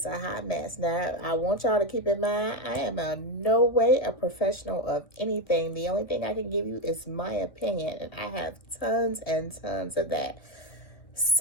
a hot mess. Now, I want y'all to keep in mind, I am in no way a professional of anything. The only thing I can give you is my opinion, and I have tons and tons of that.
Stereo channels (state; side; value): late; right; 1.6 ms